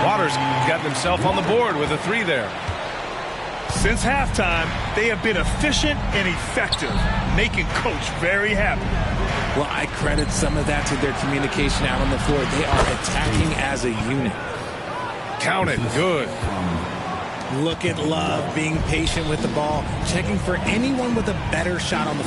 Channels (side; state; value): both; identical; correlation 1.00